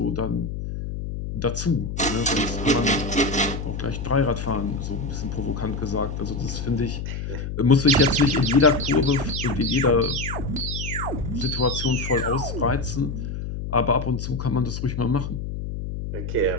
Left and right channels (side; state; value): left; noise; hum, 5 dB below the sound